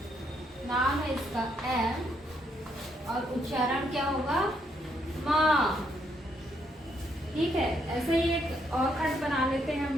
नाम है इसका एम, और उच्चारण क्या होगा, मा, ठीक है। ऐसे ही एक और खंड बना लेते हैं हम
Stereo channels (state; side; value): normal; both; correlation 0.73